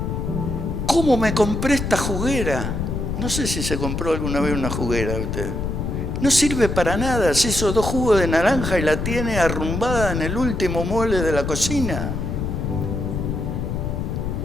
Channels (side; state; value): left; noise; rumble, 2 dB below the sound